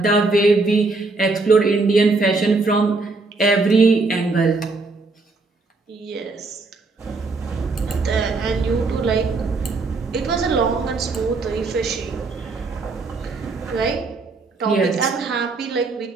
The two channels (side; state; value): left; quieter; 3.7 dB